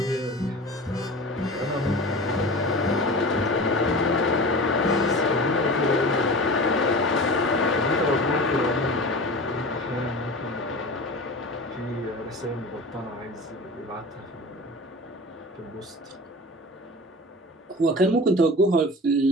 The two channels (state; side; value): normal; both; correlation 0.34